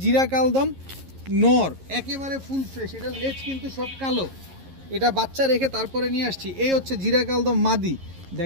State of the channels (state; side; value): late; left; 11 ms